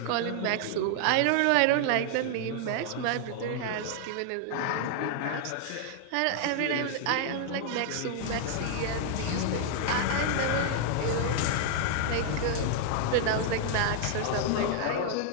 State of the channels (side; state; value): both; different; correlation 0.00